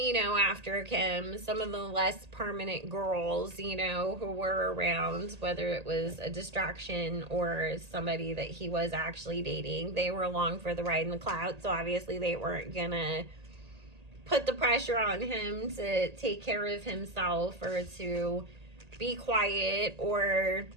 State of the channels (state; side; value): late; left; 1.8 ms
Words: you know, after Kim, some of the less permanent girls, you know, who were around, whether it was a distraction or somebody that he was actually dating, they were along for the ride in the cloud. So obviously they weren't gonna put the pressure on him to take care of himself or to be quiet or